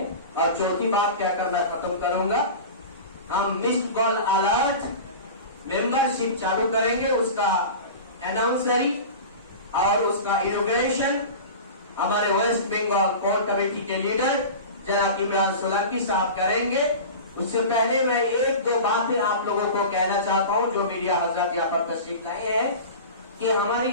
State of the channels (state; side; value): inverted; both; correlation -0.33